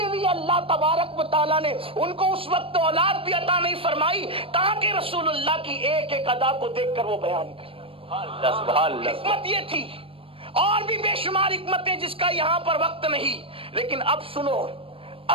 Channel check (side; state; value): left; late; 0.27 ms